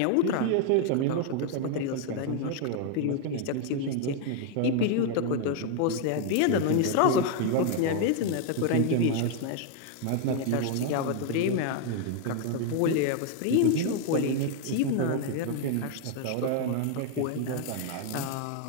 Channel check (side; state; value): both; different; correlation 0.00